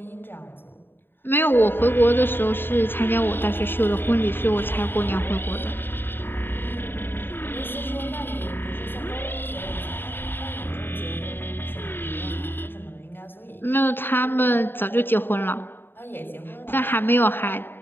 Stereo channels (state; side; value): late; right; 0.099 ms